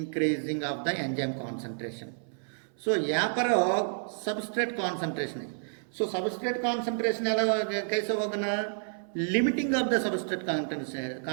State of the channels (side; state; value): left; silent; 58 dB below the other